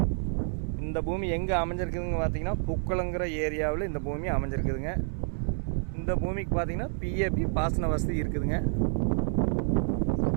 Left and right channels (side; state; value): left; silent; digital silence